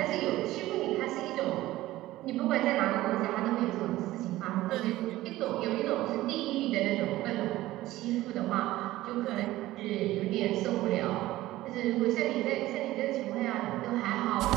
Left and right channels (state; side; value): quieter; left; 16.5 dB